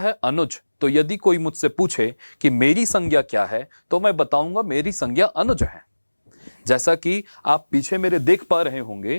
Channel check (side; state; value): both; inverted; correlation -1.00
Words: अनुज। तो यदि कोई मुझसे पूछे कि मेरी संज्ञा क्या है, तो मैं बताऊंगा मेरी संज्ञा अनुज है। जैसा कि आप पीछे मेरे देख पा रहे